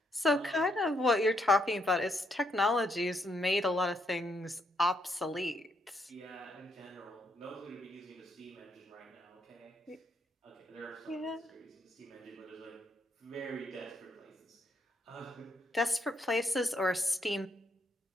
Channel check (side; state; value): both; normal; correlation 0.75